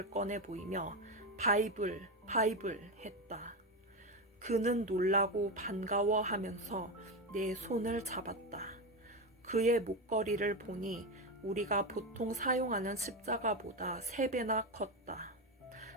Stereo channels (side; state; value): both; normal; correlation 0.14